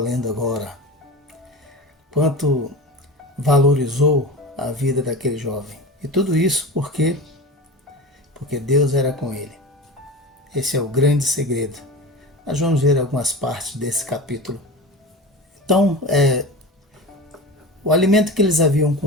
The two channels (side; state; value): both; normal; correlation 0.30